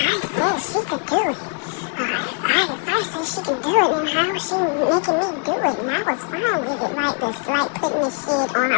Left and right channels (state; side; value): quieter; right; 38.7 dB